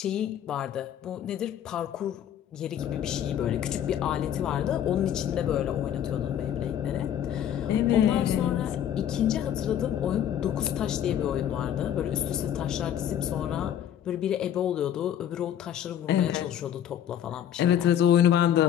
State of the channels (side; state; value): right; quieter; 10.2 dB